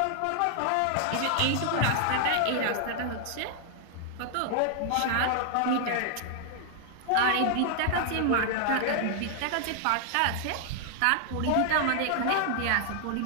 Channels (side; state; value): both; different; correlation 0.00